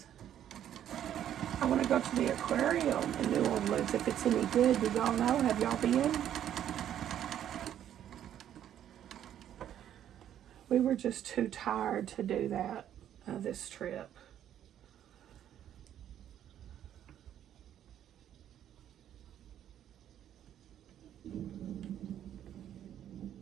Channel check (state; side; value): quieter; left; 10.6 dB